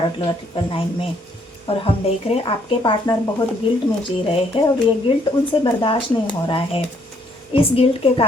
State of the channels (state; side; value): normal; both; correlation 0.68